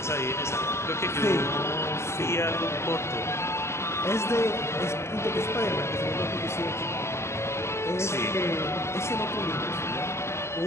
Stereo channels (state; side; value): late; right; 0.13 ms